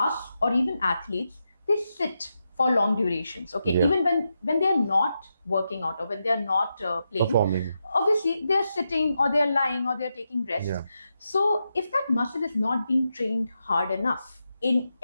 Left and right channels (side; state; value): both; inverted; correlation -0.87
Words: or even athletes, they sit for long durations. Okay, even when they are not working out or when they are not playing, performing, obviously they are sitting or they are lying or they are taking rest. Yeah. So if that muscle is not being trained hard enough in